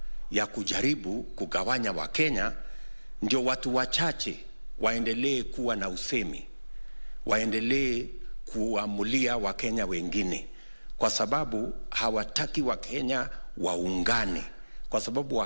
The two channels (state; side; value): inverted; both; correlation -1.00